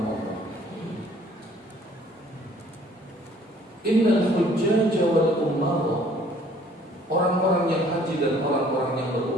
Allah. Innal hujjaj wal umara, orang-orang yang haji dan orang-orang yang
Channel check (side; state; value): both; normal; correlation 0.57